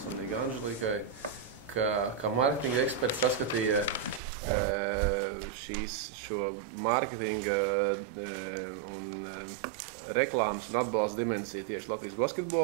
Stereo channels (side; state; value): left; drops out; at 4.2 s